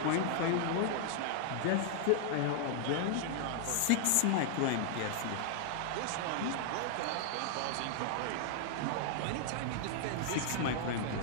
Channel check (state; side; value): different; both; correlation 0.00